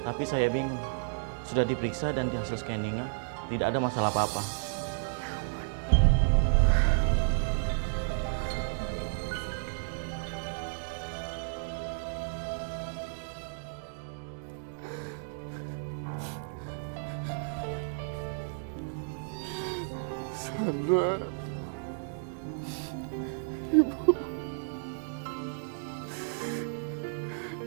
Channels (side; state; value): left; silent; 56 dB below the other